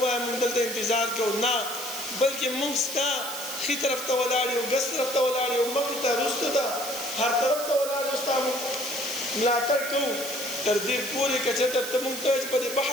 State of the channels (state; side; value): noise; right; hiss, 8 dB below the sound